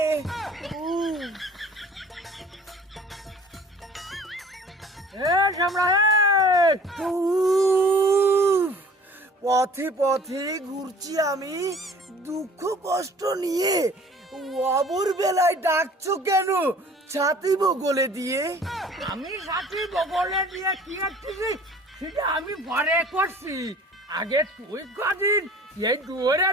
পথে পথে ঘুরছি আমি দুঃখ কষ্ট নিয়ে। অবর বেলায় ডাকছো কেন ছাতি বগলে দিয়ে? আমি সাথী বগলে দিয়ে কি করছি সেটা আমি পরে করছি। আগে তুই কদিন এই দুয়ারে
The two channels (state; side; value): normal; both; correlation 0.49